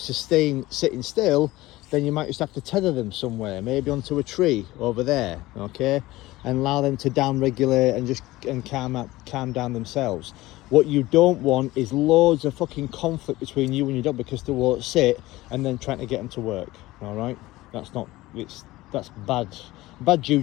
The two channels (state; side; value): quieter; right; 18.3 dB